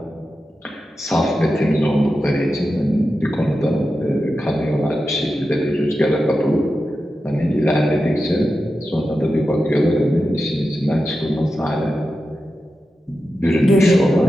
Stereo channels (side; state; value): both; normal; correlation 0.91